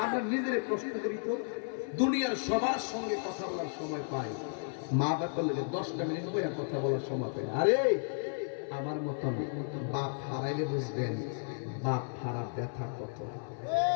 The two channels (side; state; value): right; silent; 55 dB below the other